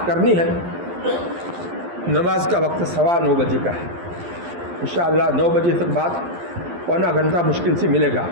کرنی ہے، نماز کا وقت 9:15 بجے کا ہے، انشاءاللہ 9 بجے تک بعد پونا گھنٹہ مشکل سے ملے گا۔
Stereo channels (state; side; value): late; left; 12 ms